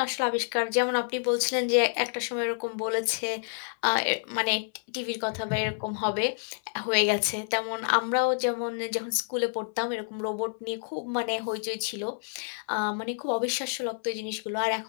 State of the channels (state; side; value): silent; right; 59 dB below the other